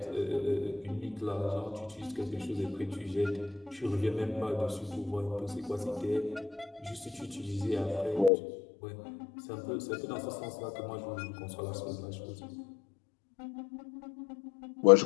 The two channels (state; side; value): drops out; right; at 8.3 s